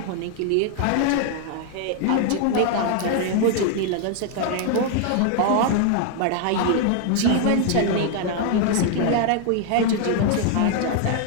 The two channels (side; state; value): both; different; correlation 0.00